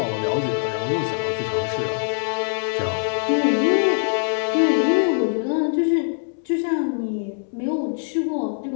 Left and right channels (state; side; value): silent; right; digital silence